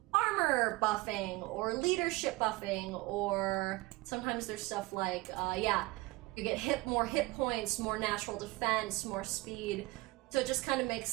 armor buffing or leadership buffing, or sometimes there's stuff like, you get more hit points, more natural defense, more speed. So it just kind of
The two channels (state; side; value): quieter; left; 22.1 dB